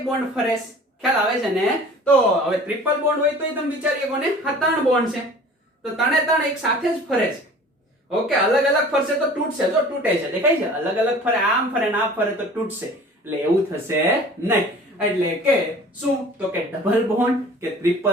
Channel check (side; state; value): both; normal; correlation 0.45